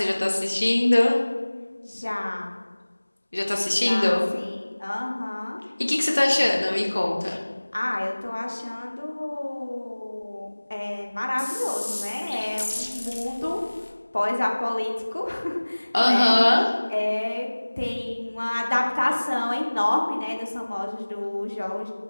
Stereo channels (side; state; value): both; inverted; correlation -1.00